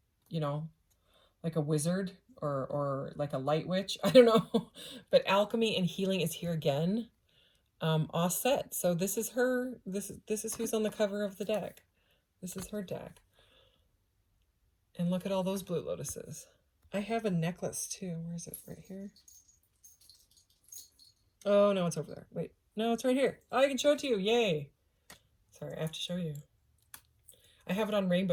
you know, like a wizard or like a light witch. I don't know. But alchemy and healing is here again. Offset. So this is her. This is who's on the cover of the deck. This is her deck. And look at all those blue lotuses. I have a necklace too. Where is it? Right here. Oh no, it's over there. Wait. No, it's right here. Oh, I can show it to you. Yay. Sorry, I have to show you. I have it on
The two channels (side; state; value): both; identical; correlation 1.00